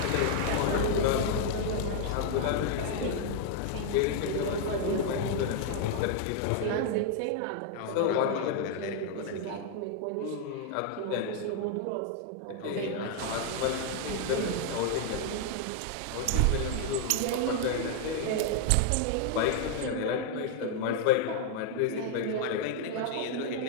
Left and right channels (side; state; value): both; different; correlation 0.00